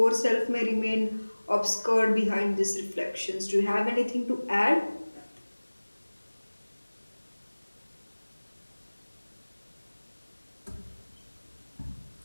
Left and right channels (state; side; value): inverted; both; correlation -1.00